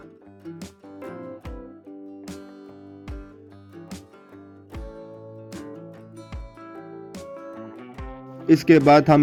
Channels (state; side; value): identical; both; correlation 1.00